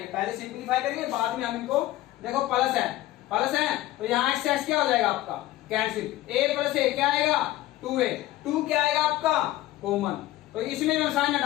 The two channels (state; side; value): quieter; right; 15.9 dB